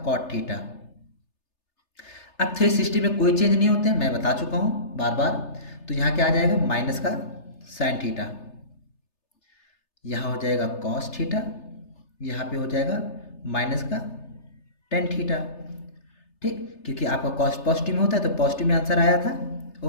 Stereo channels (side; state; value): right; late; 3.3 ms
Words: थीटा। अब 360 में कोई चेंज नहीं होते, मैं बता चुका हूँ बार बार, तो यहाँ क्या आ जाएगा, माइनस का साइन थीटा। यहाँ हो जाएगा कॉस थीटा, यहाँ पे हो जाएगा माइनस का टेन थीटा। ठीक, क्योंकि आपका कॉस पॉजिटिव में होता है तो पॉजिटिव में आंसर आया था।